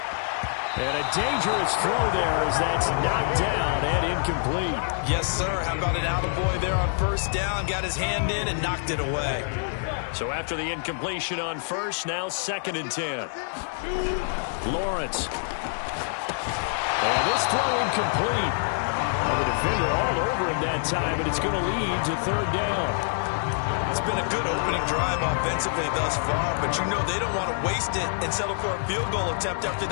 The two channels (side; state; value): right; silent; digital silence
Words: And a dangerous throw there as that's knocked down and incomplete. Yes, sir. How about an attaboy there on first down? Got his hand in and knocked it away. So after the incompletion on first, now 2nd and 10. Lawrence. And this throw incomplete. And the defender all over him that time, and it's going to lead to 3rd down. It's been a good opening drive offensively thus far, but you know they don't want to waste it and settle for a field goal attempt after